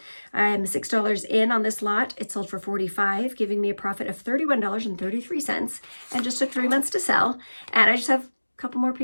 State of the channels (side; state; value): both; inverted; correlation -1.00